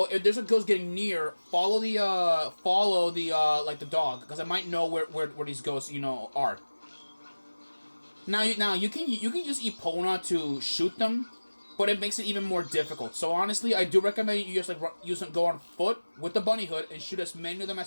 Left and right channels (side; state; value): both; inverted; correlation -1.00